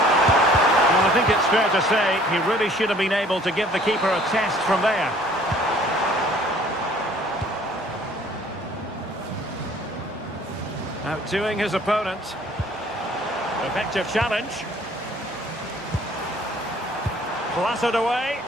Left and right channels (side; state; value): both; normal; correlation 0.55